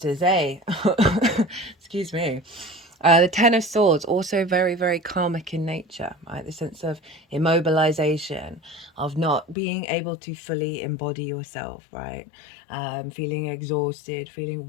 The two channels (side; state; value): right; drops out; at 9.6 s